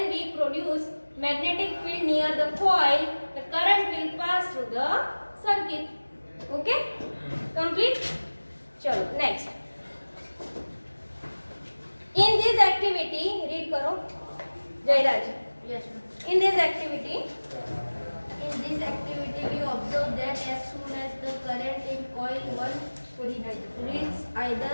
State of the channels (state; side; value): inverted; both; correlation -1.00